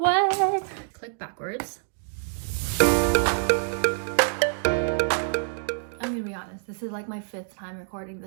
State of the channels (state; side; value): silent; left; digital silence